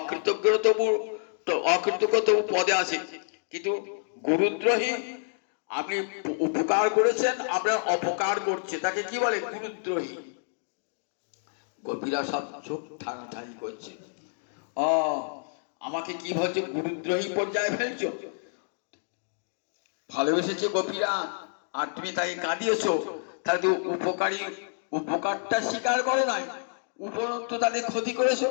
তবু পদে আছে, কিন্তু গুরুদ্রোহী, আপনি উপকার করেছেন, আপনার অপকার করছে, তাকে কি বলে? গুরুদ্রোহী। গোপীরা সব চোখ ঠানাঠানি করছে, আমাকে কি বলছে, গুরুদ্রোহী পর্যায়ে ফেলছো? ভালোবেসেছে গোপীরা, আর তুমি তাকে কাঁদিয়েছ, তাহলে তো উপকারটা স্বীকার করো নাই, উপরন্তু তাদের ক্ষতি করেছো,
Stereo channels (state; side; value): silent; right; digital silence